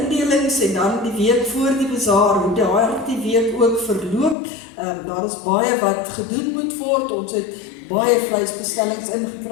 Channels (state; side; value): drops out; right; at 4.4 s